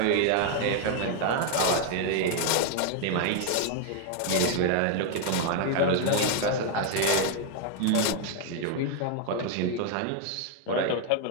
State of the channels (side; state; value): both; different; correlation 0.00